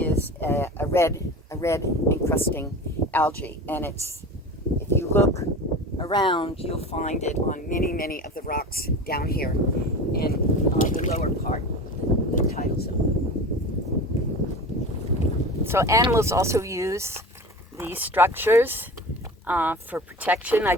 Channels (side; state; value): both; normal; correlation 0.33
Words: a red encrusting algae, and it's, if you look around, you'll find it on many of the rocks down here in the lower part, the tidal zone. So animals also use these structures for protection. I